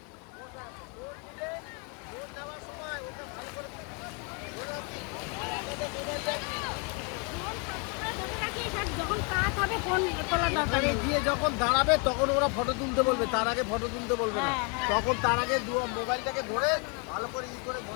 তখন তোলা দরকার এখানে গিয়ে যখন দাঁড়াবে তখন ওরা ফটো তুলতে বলবে, তার আগে ফটো তুলতে বলবে না। হ্যাঁ, হ্যাঁ। তখন তার আগে মোবাইলটাকে ধরে ভালো করে করে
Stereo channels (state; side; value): quieter; right; 34.0 dB